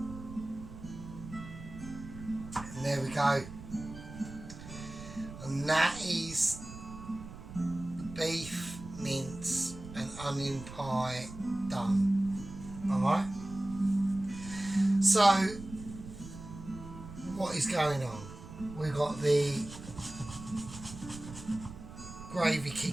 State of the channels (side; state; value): right; noise; rumble, 13 dB below the sound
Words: And there we go. And that is beef, mince and onion pie done. Alright? So, what is going on? We've got the gravy